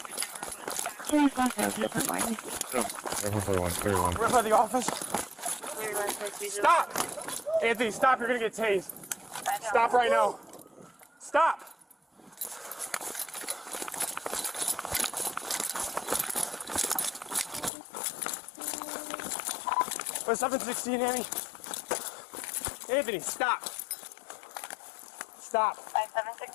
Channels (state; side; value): drops out; right; at 17.7 s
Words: We're by the office. Stop! Anthony, stop. You're gonna get tased. Stop right now. Stop! What's 716, Annie? Anthony, stop. Stop.